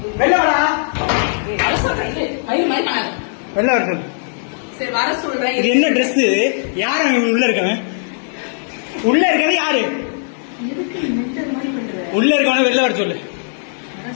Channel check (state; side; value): silent; right; digital silence